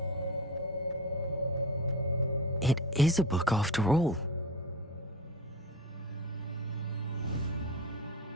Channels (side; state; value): both; normal; correlation 0.24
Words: It is a book after all.